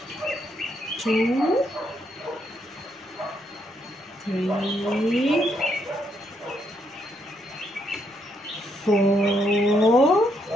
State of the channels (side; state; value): both; normal; correlation 0.76